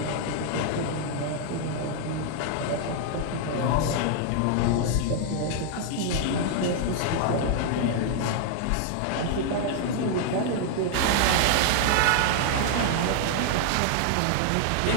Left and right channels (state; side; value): different; both; correlation -0.01